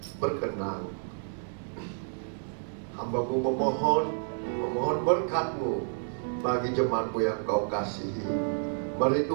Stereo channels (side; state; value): left; silent; 58 dB below the other